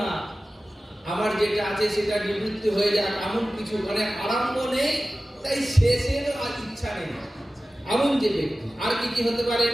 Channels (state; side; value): normal; both; correlation 0.96